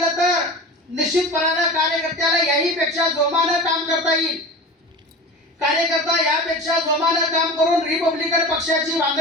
तर निश्चितपणानं कार्यकर्त्याला याहीपेक्षा जोमानं काम करता येईल. कार्यकर्ता यापेक्षा जोमानं काम करून रिपब्लिकन पक्षाची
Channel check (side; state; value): both; normal; correlation 0.33